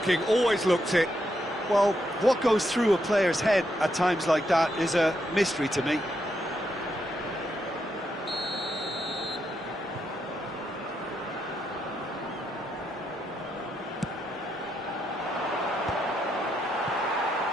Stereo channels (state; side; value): normal; both; correlation 0.80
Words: Always looked it. Well, what goes through a player's head at times like that is a mystery to me.